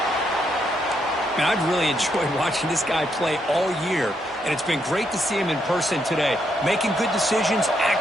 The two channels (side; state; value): both; normal; correlation 0.77